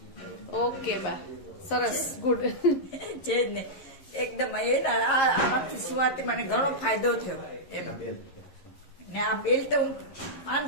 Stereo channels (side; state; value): right; late; 11 ms